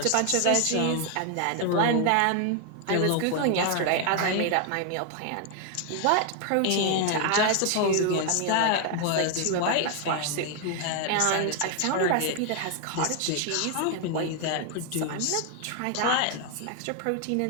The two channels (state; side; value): different; both; correlation 0.00